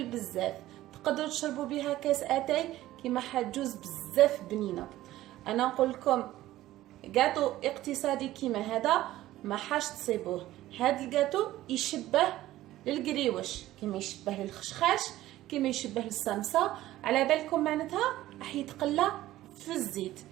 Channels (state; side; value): quieter; left; 15.2 dB